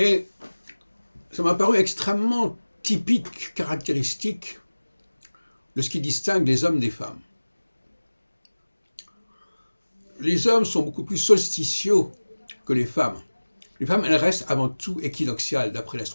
ça m'a paru extrêmement typique, caractéristique de ce qui distingue les hommes des femmes. Les hommes sont beaucoup plus solsticiaux que les femmes. Les femmes, elles restent avant tout équinoxiales, d'après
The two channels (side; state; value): both; inverted; correlation -1.00